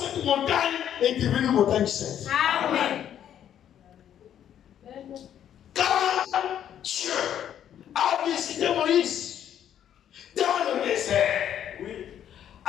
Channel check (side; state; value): right; quieter; 10.1 dB